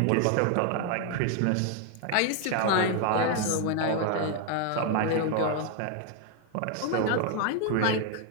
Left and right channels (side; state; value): both; different; correlation 0.01